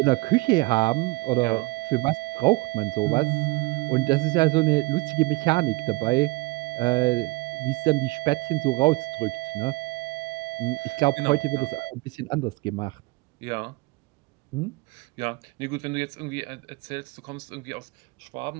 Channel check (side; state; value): left; quieter; 23.8 dB